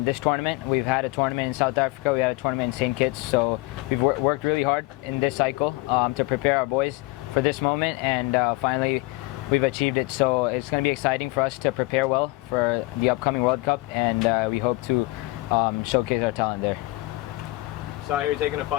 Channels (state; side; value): quieter; right; 22.1 dB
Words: this tournament. We've had a tournament in South Africa, we had a tournament in St. Kitts, so we've worked really hard in this cycle to prepare our boys for this moment, and finally we've achieved it. So it's going to be exciting for us to prepare well for the upcoming World Cup, and we hope to showcase our talent there. Sahir taking a